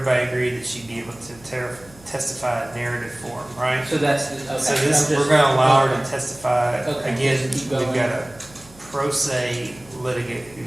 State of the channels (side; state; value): right; noise; hum, 24 dB below the sound